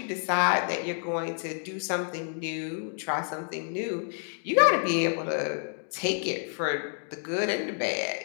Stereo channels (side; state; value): right; silent; 56 dB below the other